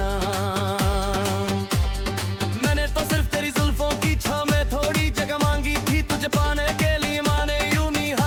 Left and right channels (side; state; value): both; identical; correlation 1.00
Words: मैंने तो सिर्फ तेरी जुल्फों की छाव में थोड़ी जगह मांगी थी, तुझे पाने के लिए माने यूं ही